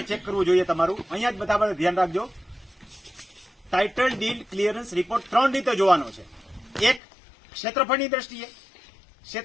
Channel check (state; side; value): drops out; right; at 7.0 s